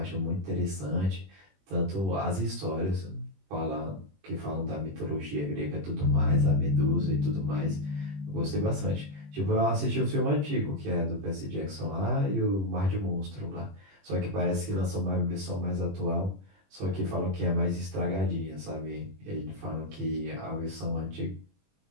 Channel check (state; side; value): late; left; 21 ms